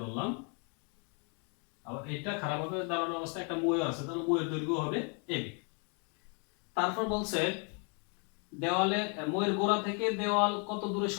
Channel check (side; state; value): right; quieter; 37.2 dB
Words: ধরলাম, আবার এটা খাড়াভাবে দাঁড়ানো অবস্থায় একটা মই আছে, তাহলে মইয়ের দৈর্ঘ্য হবে ab, তারপর বলছে দেওয়ালের মইয়ের গোড়া থেকে দেওয়াল কত দূরে